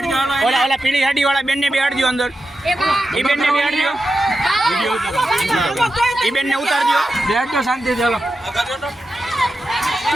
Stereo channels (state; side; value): normal; both; correlation 0.90